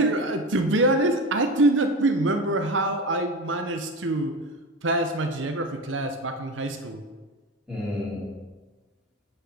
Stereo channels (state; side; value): normal; both; correlation 0.25